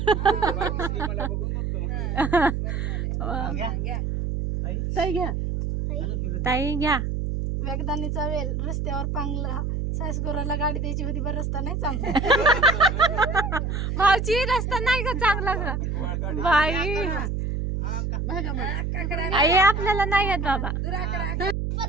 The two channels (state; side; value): noise; right; hum, 1 dB below the sound